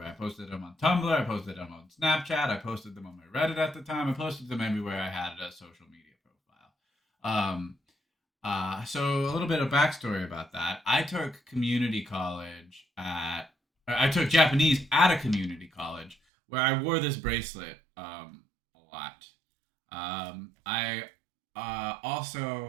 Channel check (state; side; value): drops out; left; at 16.2 s